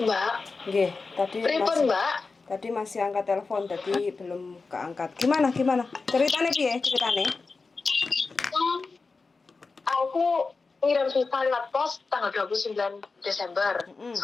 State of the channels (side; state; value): right; quieter; 4.2 dB